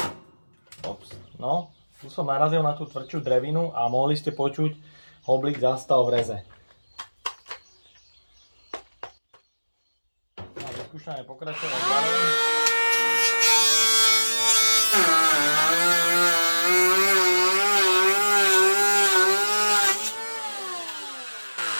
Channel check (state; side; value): inverted; both; correlation -1.00